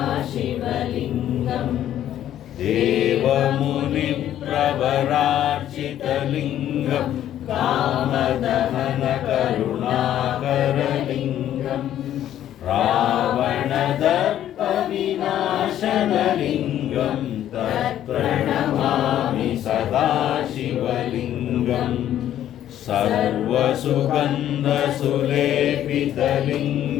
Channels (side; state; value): right; quieter; 11.6 dB